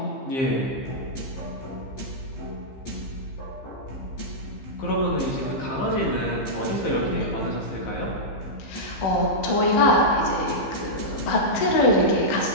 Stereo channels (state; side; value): late; right; 15 ms